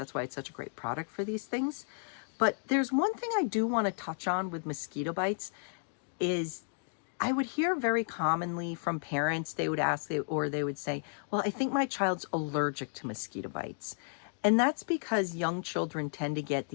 why it's such a great product for these things. But there's one thing I do want to touch on with mosquito bites is I would hear very commonly from parents, they would ask, or they would say, well, I think my child's allergic to mosquito bites. And that's because young children tend to get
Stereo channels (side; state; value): right; silent; digital silence